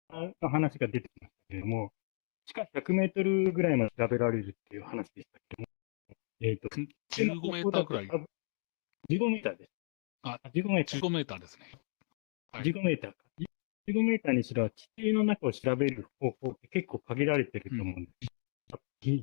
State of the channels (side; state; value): right; silent; 55 dB below the other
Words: ーの話が出てきましたけれども、地下100メートルぐらいまで調べられるっていう話でしたけども、15メーターぐらい。15メーターです。15メーター。15メーターですね。15メーターか。15メーターにしろ、地底の中を調べる方法って結構限られてると思うんです。